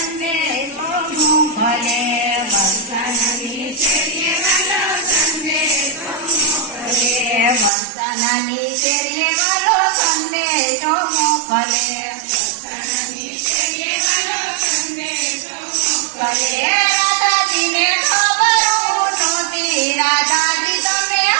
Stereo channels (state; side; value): drops out; left; at 7.7 s